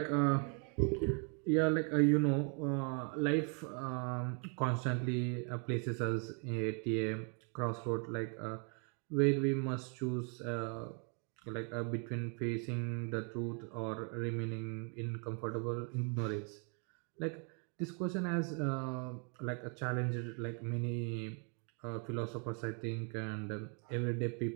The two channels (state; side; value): quieter; left; 38.8 dB